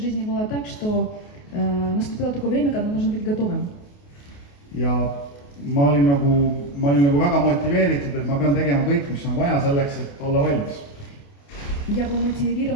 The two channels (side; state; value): right; late; 28 ms